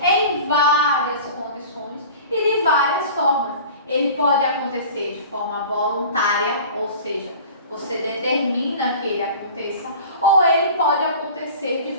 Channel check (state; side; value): inverted; both; correlation -0.40